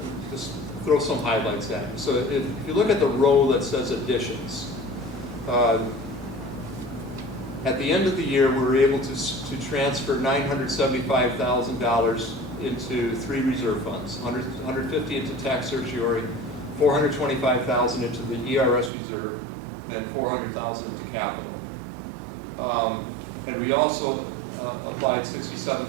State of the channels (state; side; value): drops out; left; at 18.9 s